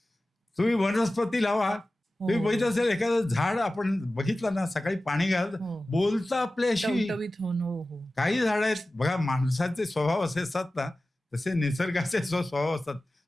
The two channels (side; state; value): both; normal; correlation 0.96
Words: तुम्ही वनस्पती लावा, तुम्ही बघितलं असेल एखादं झाड आपण बघितलं ना, सकाळी पाणी घाल, बोलतं आपल्याशी. काही झाड आहेत बघा, माणसाचे स्वभाव असे असतात ना, तसे निसर्गाचे स्वभाव असतात,